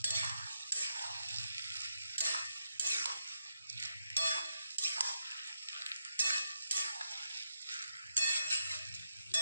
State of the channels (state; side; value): inverted; both; correlation -0.83